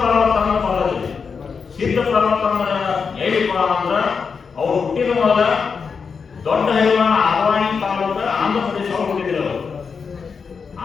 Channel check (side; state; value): right; quieter; 5.6 dB